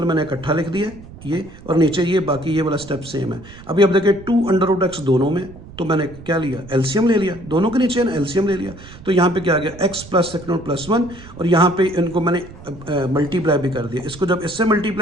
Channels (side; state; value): right; noise; rumble, 18 dB below the sound